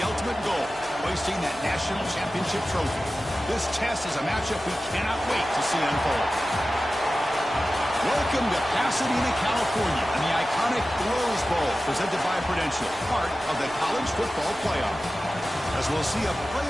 ultimate goal, hoisting that national championship trophy. This test is a matchup we cannot wait to see unfold. Welcome to Pasadena, California, and the iconic Rose Bowl, presented by Prudential, part of the college football playoff. As we'll see a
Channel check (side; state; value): left; noise; hum, 24 dB below the sound